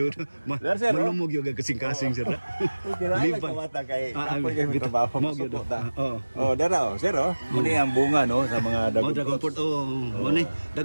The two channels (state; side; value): inverted; both; correlation -1.00